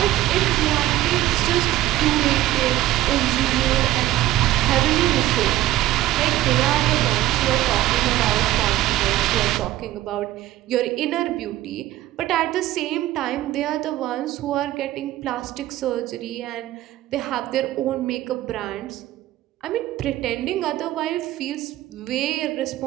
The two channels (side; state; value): left; quieter; 14.9 dB